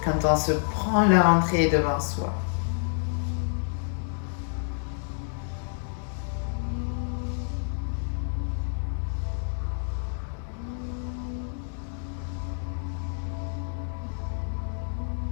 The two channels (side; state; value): right; silent; digital silence